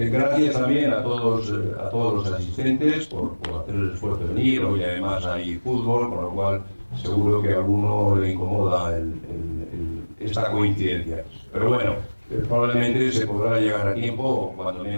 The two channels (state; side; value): inverted; both; correlation -1.00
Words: también a todos los asistentes por hacer el esfuerzo de venir. Hoy además hay fútbol, con lo cual seguro que a alguno le incomoda esta coincidencia. Pero bueno, probablemente se podrá llegar a tiempo, o cuando